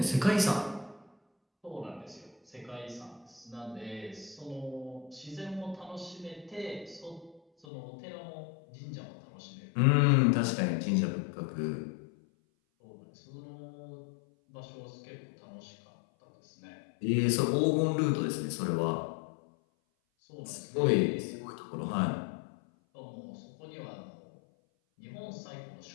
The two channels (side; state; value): right; drops out; at 7.7 s